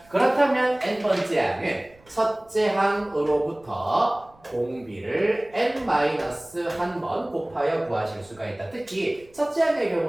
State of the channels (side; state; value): right; noise; rumble, 28 dB below the sound